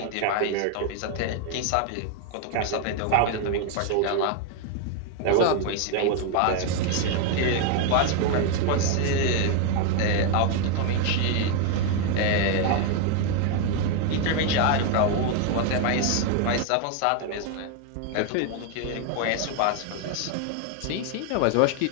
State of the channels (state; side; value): different; both; correlation 0.01